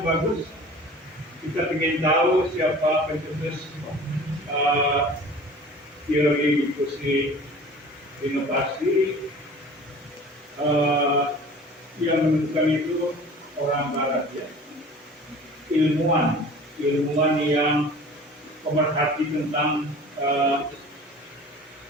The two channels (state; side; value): normal; both; correlation 0.43